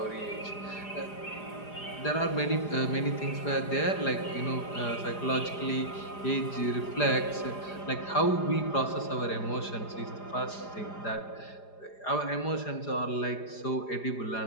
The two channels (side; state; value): right; late; 4.9 ms